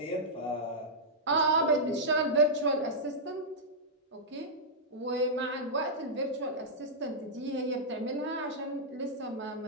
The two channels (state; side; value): normal; both; correlation -0.10